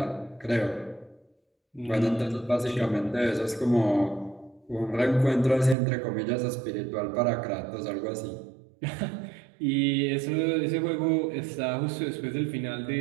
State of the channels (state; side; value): drops out; left; at 5.8 s